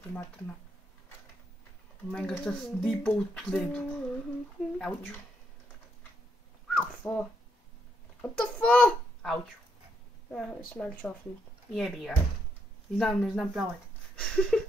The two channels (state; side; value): normal; both; correlation 0.76